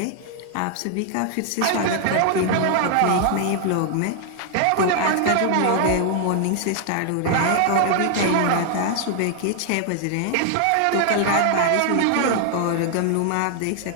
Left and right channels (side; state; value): both; different; correlation 0.00